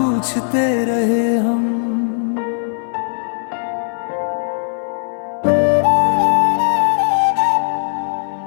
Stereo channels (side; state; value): right; silent; 61 dB below the other